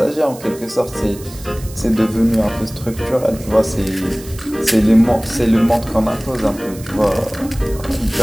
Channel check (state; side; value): noise; right; hiss, 18 dB below the sound